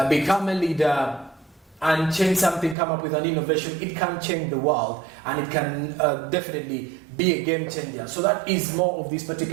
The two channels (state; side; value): drops out; left; at 2.8 s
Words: become a leader, and change something, come up with an innovation, it can change the world, and it can definitely be a game changer. So that is more of this